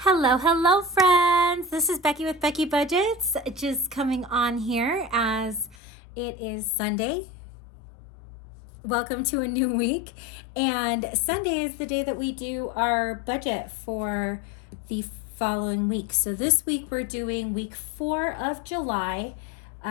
Hello, friends. This is Becky with Becky Budgets, just coming on here as it is Sunday. Welcome to a new week. And Sunday is the day that we do our budget for the following week. So this week we're doing week 4 of July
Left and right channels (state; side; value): drops out; right; at 5.8 s